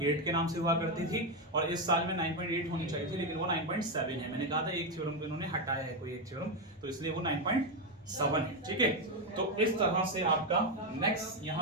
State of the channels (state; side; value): normal; both; correlation 0.07